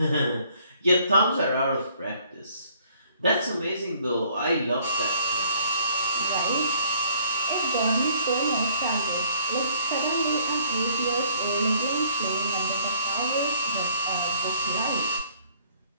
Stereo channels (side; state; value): both; inverted; correlation -0.60